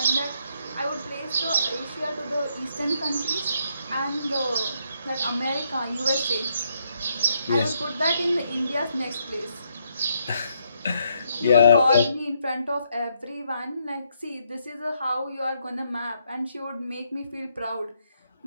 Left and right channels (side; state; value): both; inverted; correlation -0.75